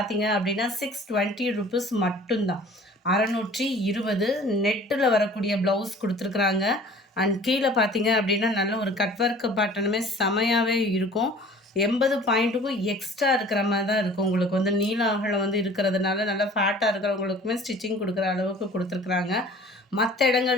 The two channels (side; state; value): both; normal; correlation 0.48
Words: அப்படின்னா 620 ருபீஸ் மட்டும்தான். 620 நெட்டில் வரக்கூடிய ப்ளவுஸ் கொடுத்துருக்குறாங்க. அண்ட் கீழே பார்த்தீங்க அப்படின்னா நல்ல ஒரு கட் ஒர்க் பேட்டர்னுமே செமையாகவே இருக்கும். 80 பாயிண்ட்டுக்கும் எக்ஸ்ட்ரா இருக்கிற மாதிரி தான் இருக்கும். உங்களுக்கு வந்து நீல அகலம் வந்து இருக்கிறதுனால நல்லா ஃபேட்டாக இருக்கிறவங்களுக்குமே ஸ்டிச்சிங் கொடுக்குற அளவுக்கு கொடுத்துருக்குறாங்க. மற்ற